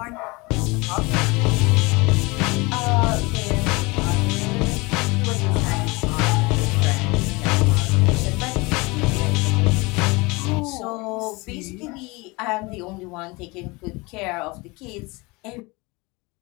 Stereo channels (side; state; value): right; quieter; 25.1 dB